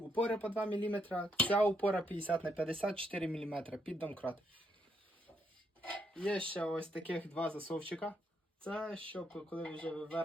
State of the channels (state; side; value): normal; both; correlation 0.76